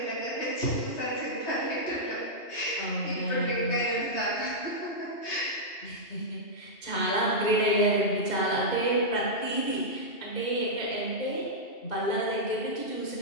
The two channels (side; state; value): right; late; 2.7 ms